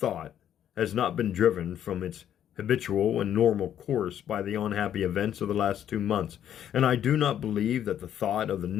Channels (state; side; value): quieter; right; 10.2 dB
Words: has not been driven from its habitual and normal course by the unhappy events of the last 2 months, and I do not believe that the thought of the